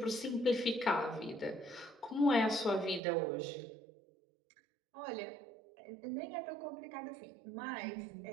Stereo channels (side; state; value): left; drops out; at 3.0 s